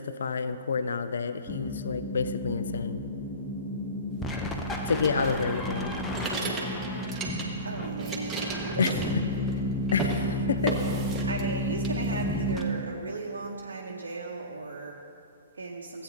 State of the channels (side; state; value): both; inverted; correlation -0.30